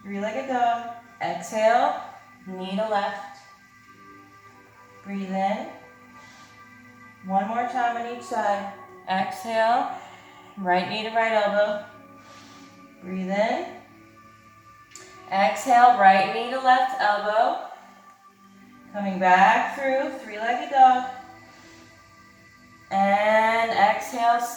three-legged dog. Exhale, knee to left. Breathe in. One more time on each side. Exhale, right knee to right elbow. Breathe in. Exhale, right knee to left elbow. Coming back through, three-legged dog. And exhale,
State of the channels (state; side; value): identical; both; correlation 1.00